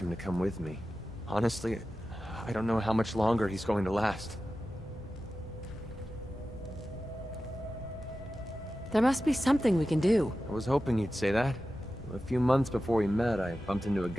to come with me. Honestly, I don't know how much longer he's going to last. There must be something we can do. I was hoping you'd say that. A few months before we met, I bumped into a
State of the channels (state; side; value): normal; both; correlation 0.93